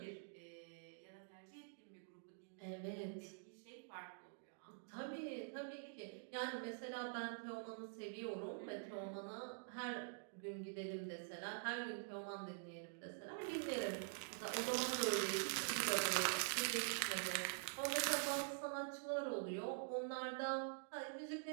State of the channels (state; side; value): silent; left; digital silence